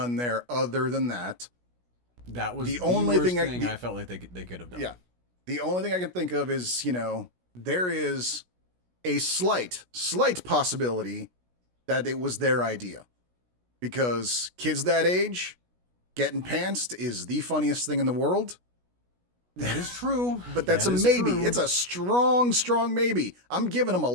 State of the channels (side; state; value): left; late; 16 ms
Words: there other than that. That was The the only worst thing thing I felt like they could have done. yeah, the only thing I can think of is, there is a slight possibility that it was their idea, because kids that age getting pantsed is the funniest thing in the world. That is true. But that's That a is maybe. true. It's a strong maybe. I'm giving them a